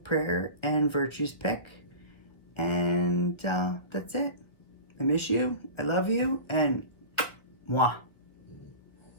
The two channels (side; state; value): right; late; 1.0 ms